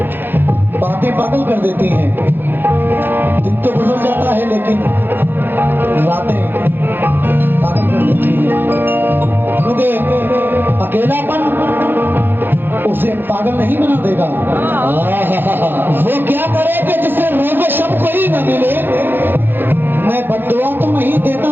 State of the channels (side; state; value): left; late; 0.098 ms